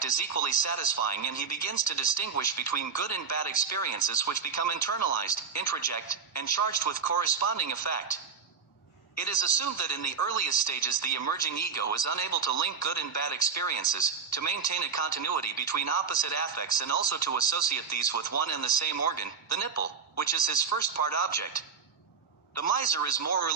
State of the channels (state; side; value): quieter; left; 5.9 dB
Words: is equally satisfying, and he begins to distinguish between good and bad experiences which become internalized, introject, and charged with corresponding effect. It is assumed that in the earliest stages the emerging ego is unable to link good and bad experiences, to maintain a continuity between opposite affects and also to associate these with one and the same organ, the nipple, which is his first part object. The miser is more or